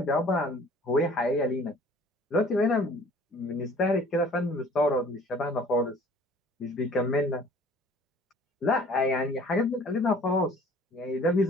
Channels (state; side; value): normal; both; correlation 0.52